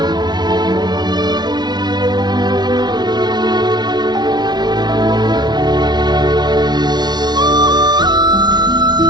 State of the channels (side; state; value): left; late; 0.20 ms